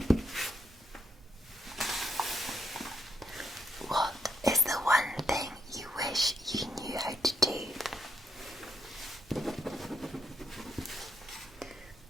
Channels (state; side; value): normal; both; correlation 0.76